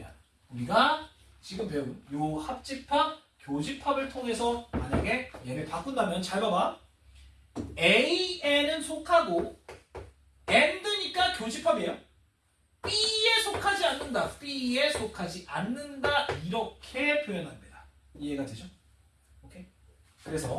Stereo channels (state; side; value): identical; both; correlation 1.00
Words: 우리가 지금 배운 요 합집합, 교집합을 통해서 만약에 얘를 바꾼다면 잘 봐봐. A에는 속하고 and니까 교집합이에요. B에 속하지 않는다. B에 속하지 않는다. 이렇게 표현합니다. 이해가 되죠? 오케이?